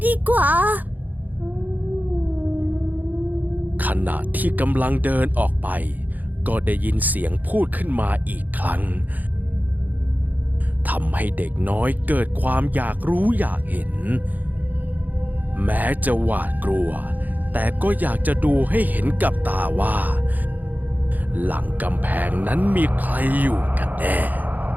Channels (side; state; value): left; late; 0.083 ms